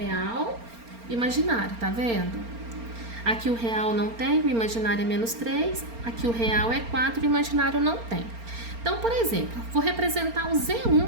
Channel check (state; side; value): late; left; 4.3 ms